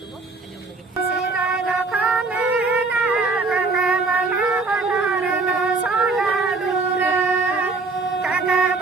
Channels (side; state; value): left; quieter; 3.9 dB